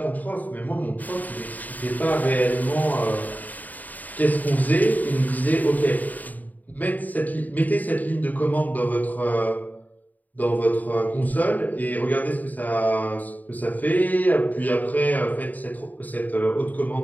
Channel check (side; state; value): right; late; 0.080 ms